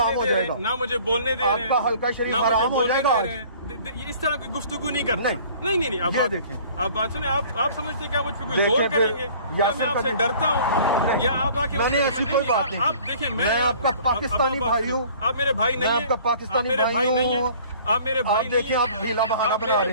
हो बोलने दे रहे जाएगा, हैं, ना मुझे बोलने दे रहे हैं, आपका हल्का शरीफ ना मुझे हराम हो बोलने जाएगा दे आज। रहे हैं। इस तरह की गुफ्तगू नहीं करना। नहीं, आप ये बात देखें। आप बात सुने, आप समझते हैं क्या मुझ पे कोई देखें जोर फिर, करेंगे, या यासिर मैं आपसे का- डरता हूँ, नहीं, या आप आके मैंने ऐसी कोई बात नहीं आप की। देखें, मैं आपका पाकिस्तानी भाई हूँ, आप मेरे भाई नहीं मैं है, आपका पाकिस्तानी मेरे भाई नहीं है, हूँ। आप मेरे भाई आप नहीं देखिए, है, आप ढीला बहाना आप बना मेरे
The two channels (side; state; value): both; inverted; correlation -0.51